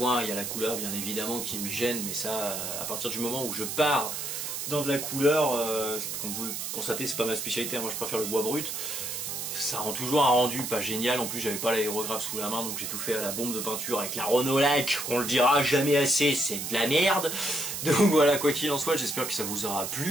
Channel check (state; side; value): noise; right; hiss, 4 dB below the sound